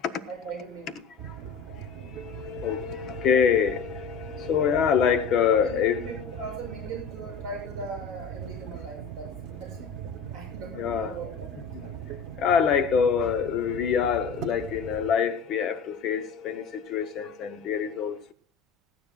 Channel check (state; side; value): quieter; right; 5.9 dB